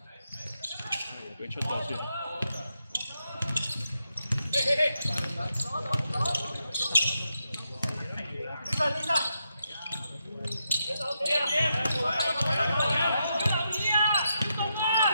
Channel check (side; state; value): both; inverted; correlation -0.83